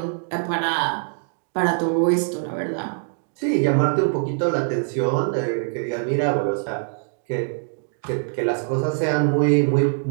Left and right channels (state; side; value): silent; left; digital silence